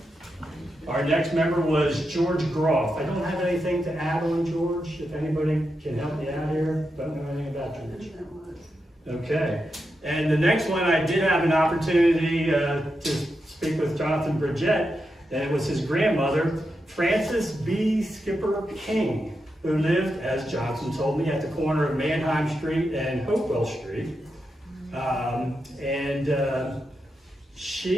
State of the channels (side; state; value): both; normal; correlation 0.87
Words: Our next member was George Groff. I don't have anything to add on George. If anybody can help me out here, don't know anything about George. Okay. And the next one, I did have an opportunity to speak with Jonathan Bridgette, and it was his grandmother, Frances B. Skipper King, who lived, as Johnson told me, at the corner of Mannheim Street and Hopewell Street.